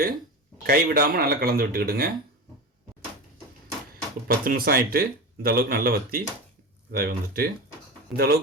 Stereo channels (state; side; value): normal; both; correlation 0.26